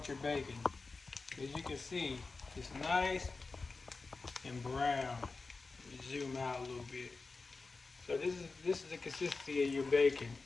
your bacon. As you can see, it's nice and brown. Zoom out a little bit. So this is the consistency of your bacon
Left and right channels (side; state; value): right; quieter; 4.0 dB